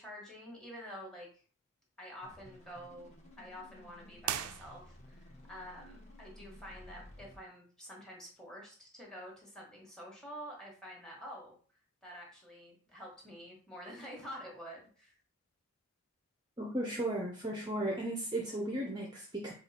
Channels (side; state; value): both; normal; correlation 0.47